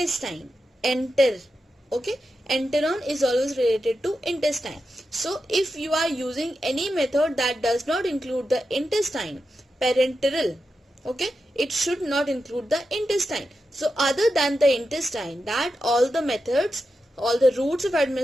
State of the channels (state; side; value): normal; both; correlation 0.89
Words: Okay, enteron is always related to intestine. So if you are using any method that does not include the intestine, parenteral, okay, it should not include the intestine. So other than the intestine, that all the methods, all the routes of